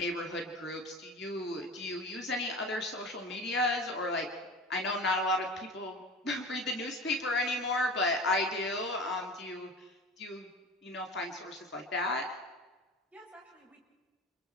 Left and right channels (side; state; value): both; normal; correlation 0.34